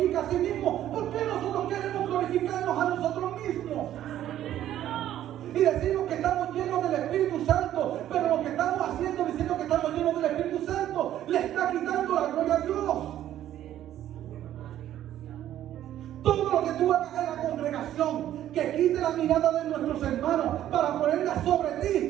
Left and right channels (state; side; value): quieter; left; 12.1 dB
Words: a sí mismo, ¿por qué nosotros queremos glorificarnos a nosotros mismos? Y decimos que estamos llenos del Espíritu Santo, pero lo que estamos haciendo diciendo que estamos llenos del Espíritu Santo le está quitando la gloria a Dios. Todo lo que tú hagas en la congregación que quite la mirada de nuestros hermanos para ponerla sobre